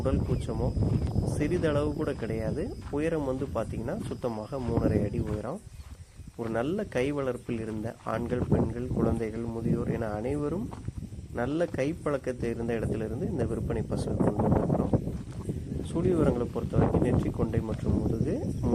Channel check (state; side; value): identical; both; correlation 1.00